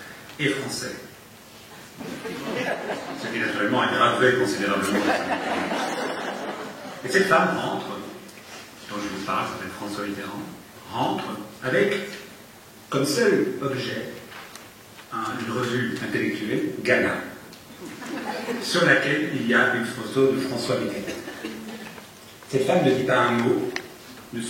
et français. Ce qui naturellement aggravait considérablement. Et cette femme rentre, dont je vous parle, s'appelle François Mitterrand, rentre avec comme seul objet une revue intellectuelle, Gala, sur laquelle il y a une photo de François Mitterrand. Cette femme ne dit pas un mot,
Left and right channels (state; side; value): identical; both; correlation 1.00